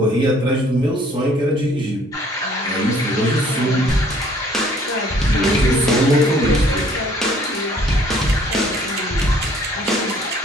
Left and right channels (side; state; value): both; normal; correlation 0.59